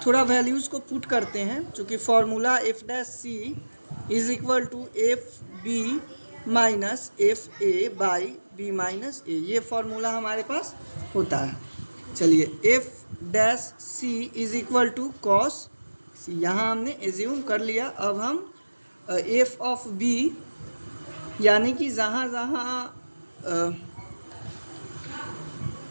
थोड़ा वैल्यूज़ को पुट करते हैं। चूँकि formula f dash c is equal to f b minus f a by b minus a, ये फॉर्मूला हमारे पास होता है। चलिए f dash c is equal to cos c, यहाँ हमने एज्यूम कर लिया। अब हम एफ ऑफ बी यानी कि जहाँ जहाँ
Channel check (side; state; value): both; inverted; correlation -1.00